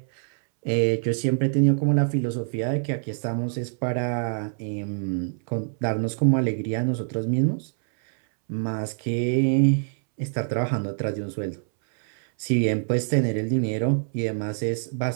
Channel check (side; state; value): left; silent; 62 dB below the other